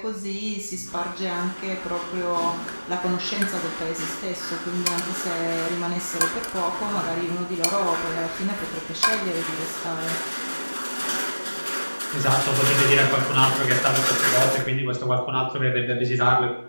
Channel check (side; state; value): both; inverted; correlation -1.00